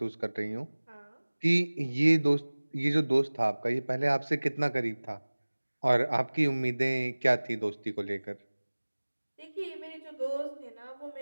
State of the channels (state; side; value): inverted; both; correlation -1.00